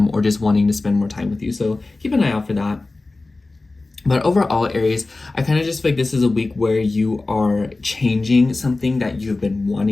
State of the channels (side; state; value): right; quieter; 3.3 dB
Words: or just wanting to spend more time with you. So keep an eye out for that. But overall, Aries, I kind of just feel like this is a week where you are changing something that you've been